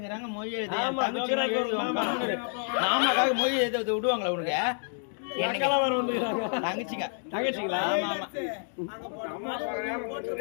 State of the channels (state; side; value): silent; right; 59 dB below the other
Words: மொழி எழுத. ஆமா மாமாக்காக மொழி எழுத விடுவாங்களா உனக்கு? அக்கெல்லாம் வர வந்துக்கிறாங்க. தங்கச்சிங்க. தங்கச்சிங்களா? ஆமா ஆமா.